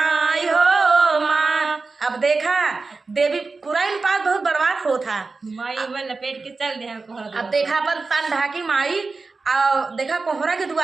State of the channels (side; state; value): left; quieter; 4.0 dB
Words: अब देखा देवी पुराइन पात बहुत बर्बाद हो था। माई में लपेट के चल दे हमको हर अब देखा अपन तन ढाकी माई और देखा कोहरा के